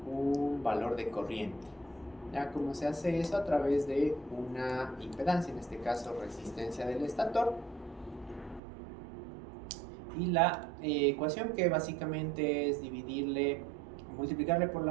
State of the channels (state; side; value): drops out; left; at 8.6 s